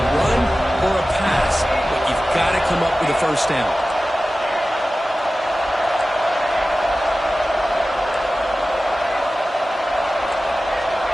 or a pass, but you've got to come up with a 1st down.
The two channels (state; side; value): normal; both; correlation 0.96